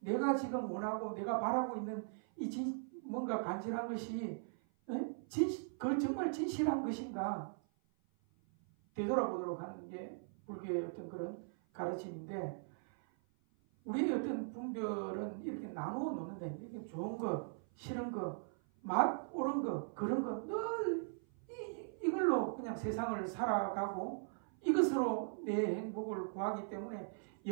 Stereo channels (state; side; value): silent; left; 51 dB below the other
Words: 내가 지금 원하고 내가 바라고 있는 뭔가 간절한 것이 그 정말 진실한 것인가 되돌아보도록 하는 게 불교의 어떤 그런 가르침인데 우리의 어떤 분별은 이렇게 나누어 놓는다. 이게 좋은 거, 싫은 거, 맛 옳은 거, 그런 거 늘 이걸로 그냥 세상을 살아가고 이것으로 내 행복을 구하기 때문에